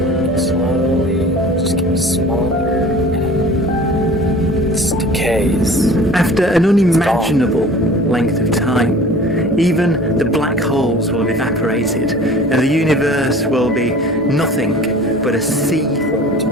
slowly, just getting smaller. Decays. After an unimaginable length of time, even the black holes will have evaporated, and the universe will be nothing but a sea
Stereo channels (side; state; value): both; normal; correlation 0.44